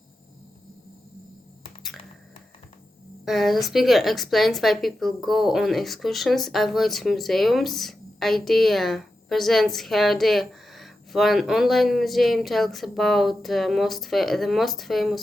The speaker explains why people go on excursions, avoids museums. Idea presents her idea for an online museum, tells about the most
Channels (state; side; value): normal; both; correlation 0.90